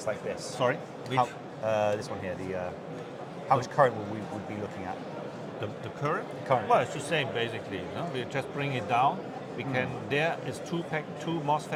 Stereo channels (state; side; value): identical; both; correlation 1.00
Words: like this? Sorry, which? This one here. How much current would we be looking at? The current? Current. Well, it's the same basically. We just bring it down. We can. There is two